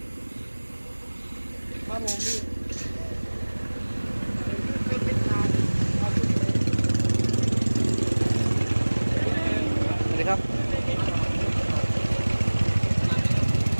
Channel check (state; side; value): inverted; both; correlation -1.00